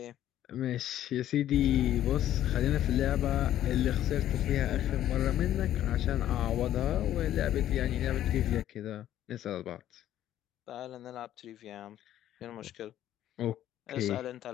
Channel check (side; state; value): right; quieter; 12.1 dB